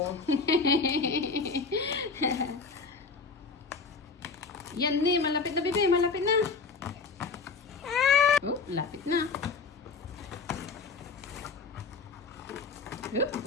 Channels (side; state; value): right; quieter; 4.7 dB